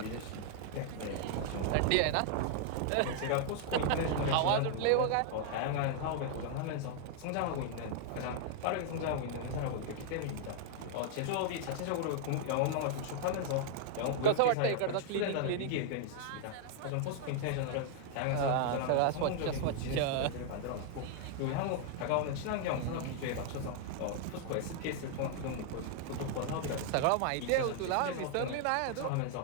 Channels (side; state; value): both; different; correlation 0.00